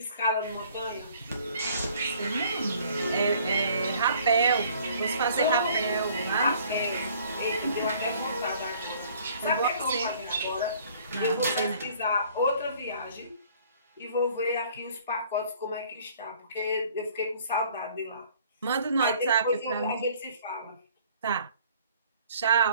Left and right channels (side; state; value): both; inverted; correlation -0.56